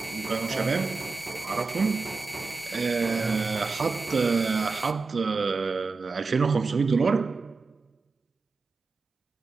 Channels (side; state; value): left; quieter; 4.2 dB